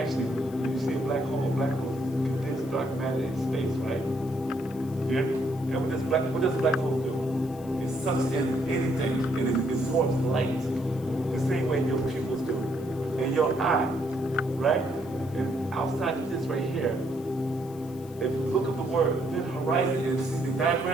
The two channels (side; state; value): left; noise; hiss, 23 dB below the sound